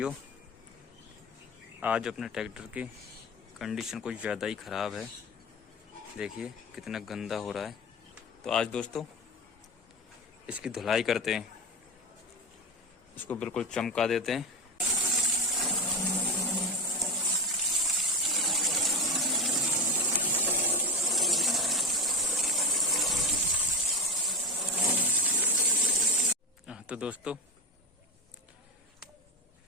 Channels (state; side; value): normal; both; correlation 0.20